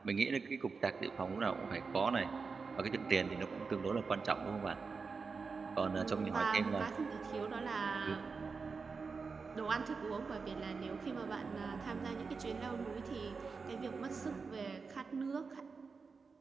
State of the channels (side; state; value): left; quieter; 4.8 dB